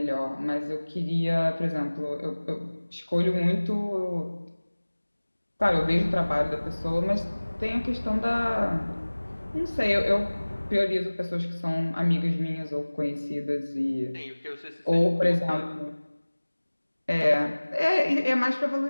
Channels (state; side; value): inverted; both; correlation -1.00